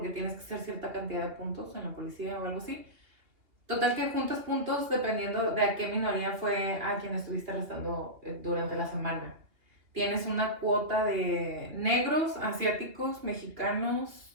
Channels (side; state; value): left; late; 3.0 ms